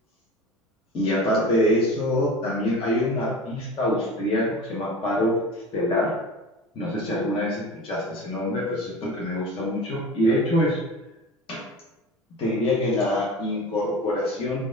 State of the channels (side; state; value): both; normal; correlation 0.35